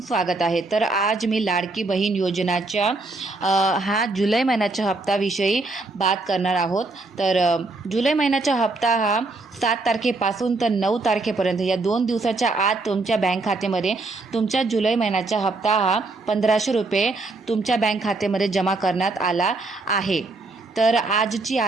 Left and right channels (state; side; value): quieter; left; 3.3 dB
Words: स्वागत आहे। तर आज मी लाडकी बहीण योजनाच्या हा जुलै महिन्याच्या हप्त्याविषयी बात करणार आहोत। तर जुलै महिन्याचा हप्ता हा 7 तारखेपासून तर 9 तारखेपर्यंत या 2 दिवसाच्या आत तुमच्या बँक खात्यामध्ये तुमच्या जुलै महिन्याचा हप्ता हा 1500 रुपये तुमच्या बँक खात्यामध्ये जमा करण्यात आला आहे। तर आजची